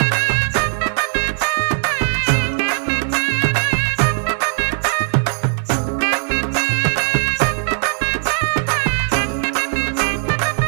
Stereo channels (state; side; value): silent; left; digital silence